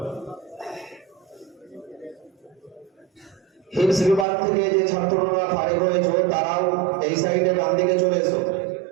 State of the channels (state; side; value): drops out; left; at 4.2 s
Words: হিপস বিভাগ থেকে যে ছাত্ররা ফারিগ হয়েছে তারাও এই সাইডে ডান দিকে চলে এসো,